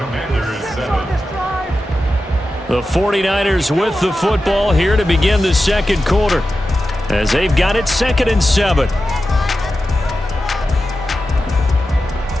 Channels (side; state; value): both; normal; correlation 0.92